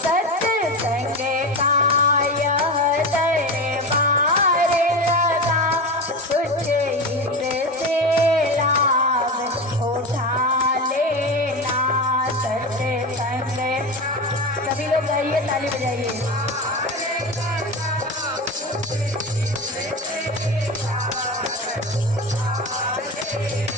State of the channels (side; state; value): both; normal; correlation 0.23